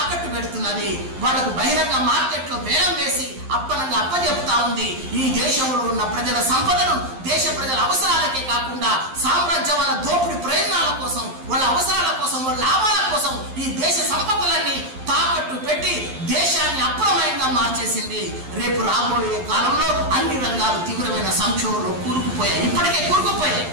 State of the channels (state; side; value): late; left; 11 ms